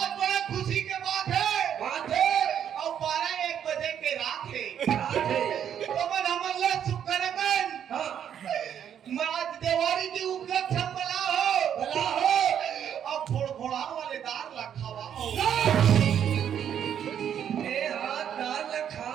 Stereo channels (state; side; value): quieter; left; 9.1 dB